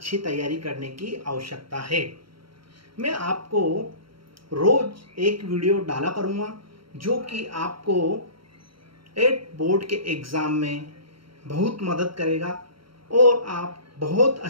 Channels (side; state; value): left; late; 0.74 ms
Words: तैयारी करने की आवश्यकता है। मैं आपको रोज एक वीडियो डाला करूँगा जो कि आपको 8 बोर्ड के एग्ज़ाम में बहुत मदद करेगा और आप बहुत